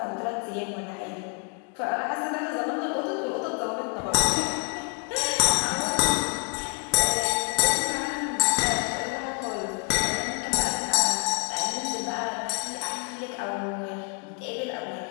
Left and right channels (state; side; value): quieter; right; 38.0 dB